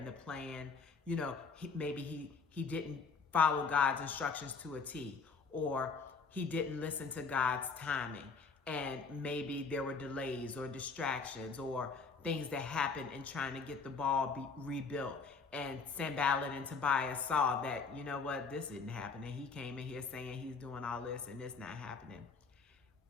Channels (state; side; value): quieter; right; 4.9 dB